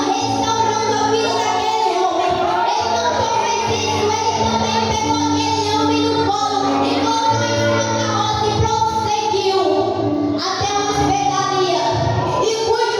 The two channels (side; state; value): both; identical; correlation 1.00